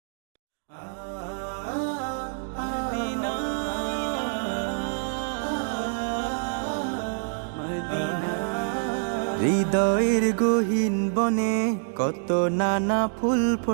হৃদয়ের গহীন বনে কত নানা ফুল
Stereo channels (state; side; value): silent; left; digital silence